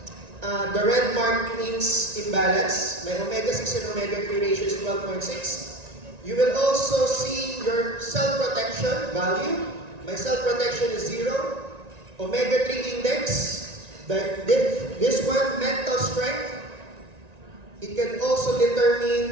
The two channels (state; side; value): late; left; 1.9 ms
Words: the red mark means imbalance. My omega-6 and omega-3 ratio is 12.6. You will also see your cell protection value. My cell protection is 0. Omega-3 index, this one, mental strength. It can also